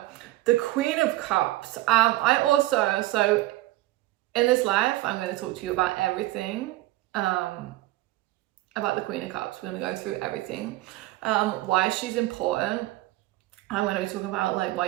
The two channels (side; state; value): left; quieter; 17.7 dB